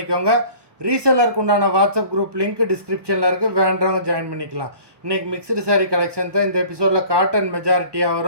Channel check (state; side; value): late; left; 1.2 ms